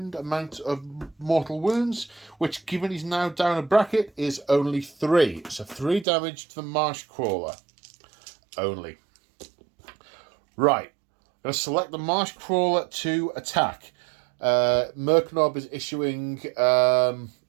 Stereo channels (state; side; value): drops out; left; at 6.1 s